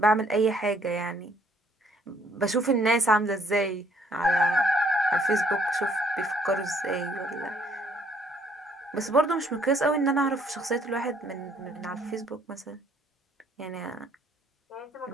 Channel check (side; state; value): both; normal; correlation 0.64